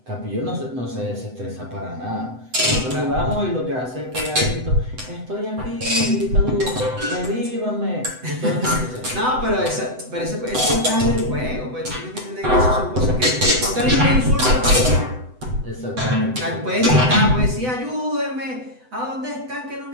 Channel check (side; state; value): left; late; 7.9 ms